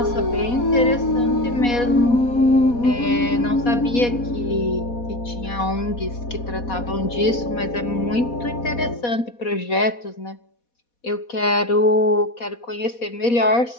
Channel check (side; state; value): right; late; 4.1 ms